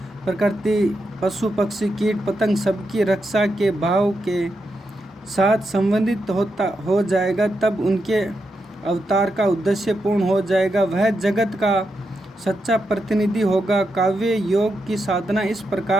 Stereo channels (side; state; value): both; normal; correlation 0.85